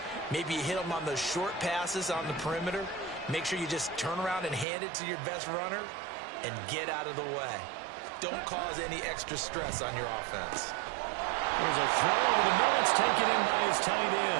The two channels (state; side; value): drops out; left; at 4.7 s